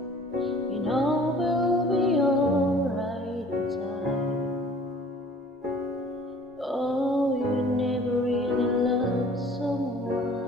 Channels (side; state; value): both; normal; correlation 0.51